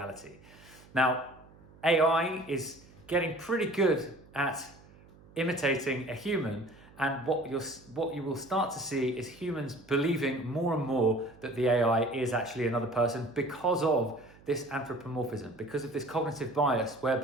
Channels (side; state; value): right; noise; hum, 24 dB below the sound